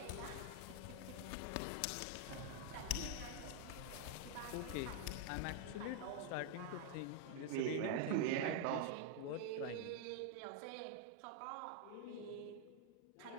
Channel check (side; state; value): both; different; correlation 0.00